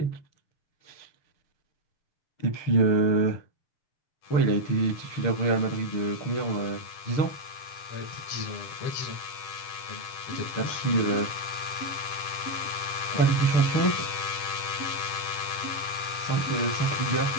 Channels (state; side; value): late; right; 6.6 ms